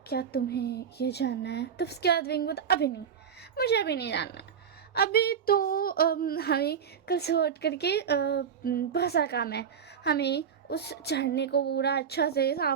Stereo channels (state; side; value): quieter; left; 7.5 dB